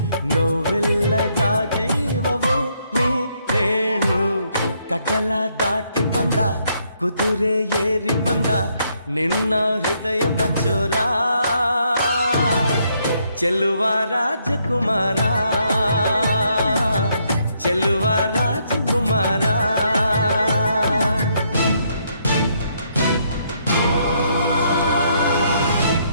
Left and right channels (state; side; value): inverted; both; correlation -0.73